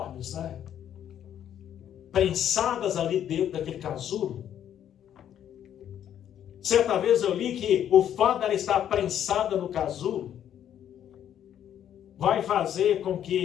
né? Prensadas ali dentro daquele casulo. Certa vez eu li que o fato dela estar prensada no casulo vai fazer com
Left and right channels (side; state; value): right; quieter; 10.2 dB